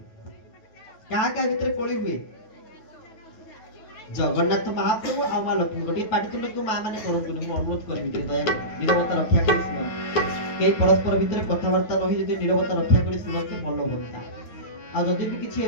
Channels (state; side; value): late; right; 9.2 ms